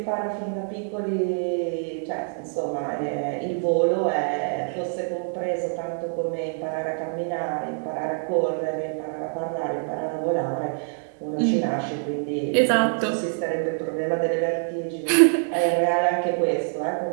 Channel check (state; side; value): silent; left; digital silence